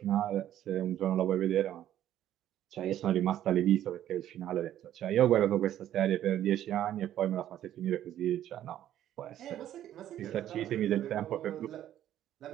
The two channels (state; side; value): quieter; left; 11.8 dB